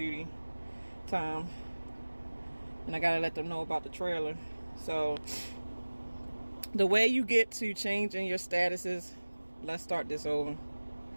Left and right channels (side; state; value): both; inverted; correlation -1.00